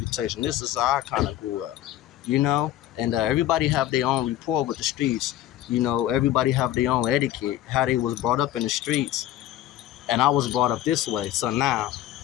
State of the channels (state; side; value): quieter; right; 13.3 dB